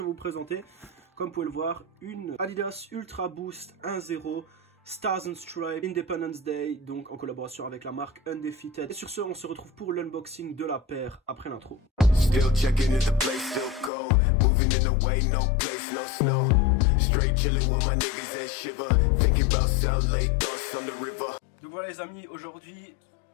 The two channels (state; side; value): drops out; right; at 13.9 s